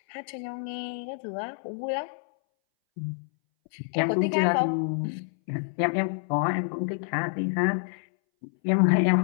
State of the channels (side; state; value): right; silent; 60 dB below the other